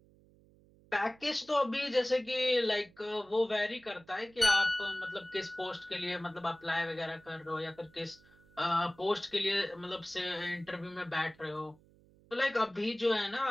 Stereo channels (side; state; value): right; noise; hum, 28 dB below the sound